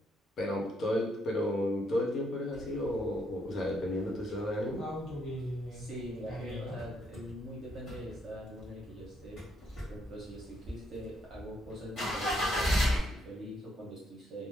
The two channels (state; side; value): normal; both; correlation 0.74